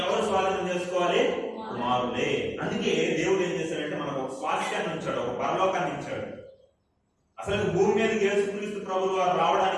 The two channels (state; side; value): identical; both; correlation 1.00